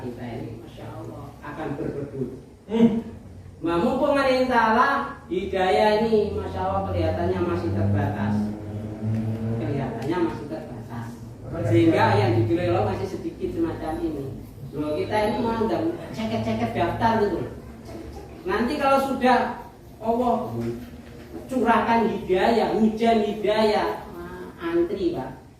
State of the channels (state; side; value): identical; both; correlation 1.00